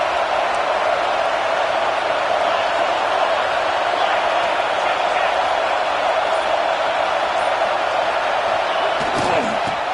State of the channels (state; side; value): identical; both; correlation 1.00